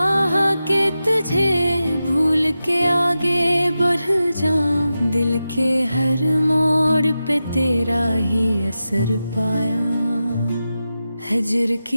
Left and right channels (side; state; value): both; inverted; correlation -0.92